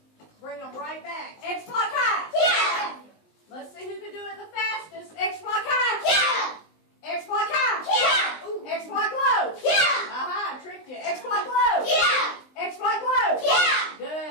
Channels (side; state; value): right; late; 19 ms